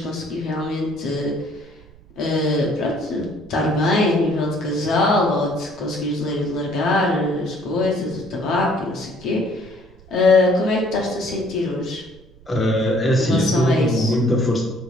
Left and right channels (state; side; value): noise; right; rumble, 24 dB below the sound